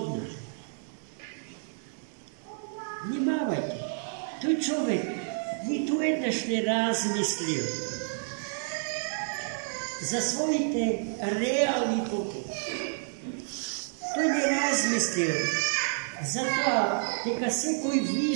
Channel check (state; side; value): silent; left; digital silence